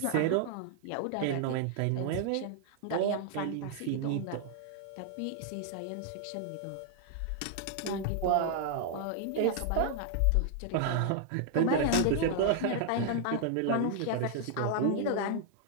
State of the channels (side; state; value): both; different; correlation 0.00